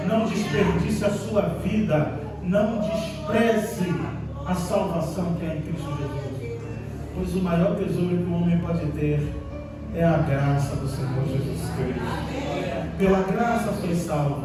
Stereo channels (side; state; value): both; identical; correlation 1.00